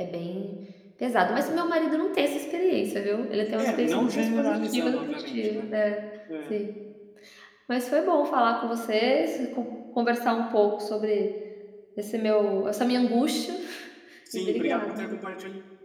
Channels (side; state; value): both; identical; correlation 1.00